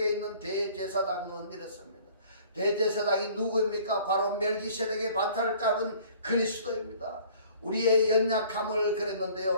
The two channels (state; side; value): inverted; both; correlation -0.52